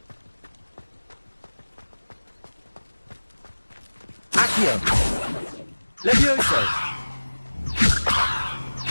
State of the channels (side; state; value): both; inverted; correlation -1.00